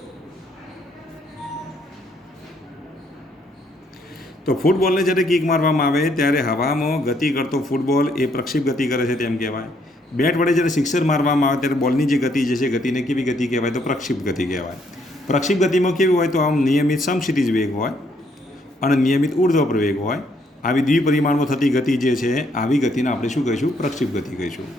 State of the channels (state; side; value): normal; both; correlation 0.70